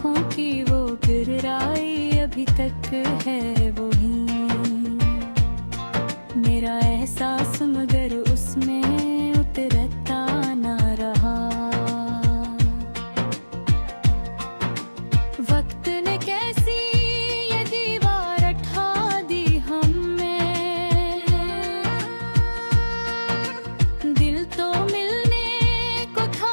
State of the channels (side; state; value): both; inverted; correlation -1.00